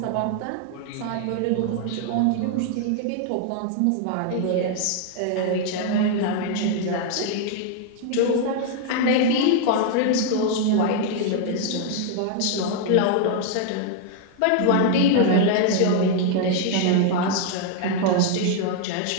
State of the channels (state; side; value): different; both; correlation 0.00